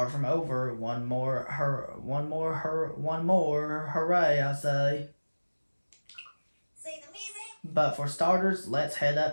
from over. One more hooray, I say. But for starters, let's head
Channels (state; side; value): inverted; both; correlation -1.00